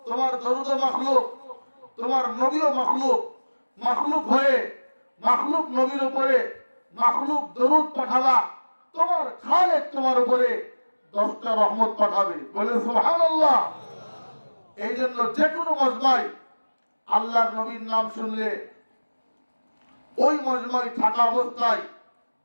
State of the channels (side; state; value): both; inverted; correlation -1.00